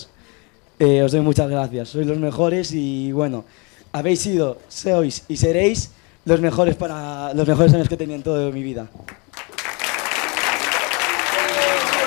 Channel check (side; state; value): right; quieter; 30.6 dB